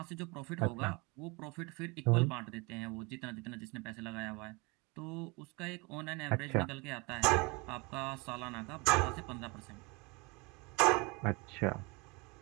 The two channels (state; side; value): quieter; left; 27.6 dB